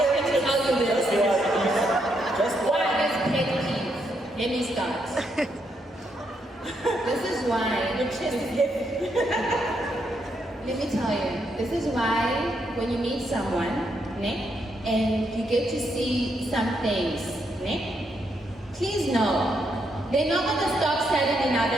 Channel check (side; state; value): both; normal; correlation 0.78